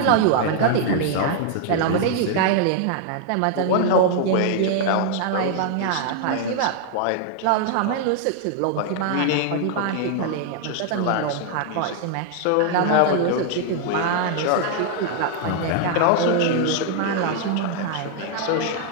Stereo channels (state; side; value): different; both; correlation 0.00